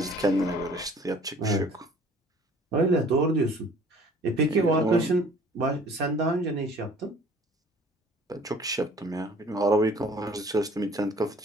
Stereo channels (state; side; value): normal; both; correlation 0.51